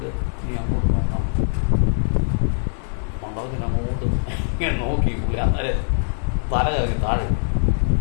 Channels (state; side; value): silent; right; digital silence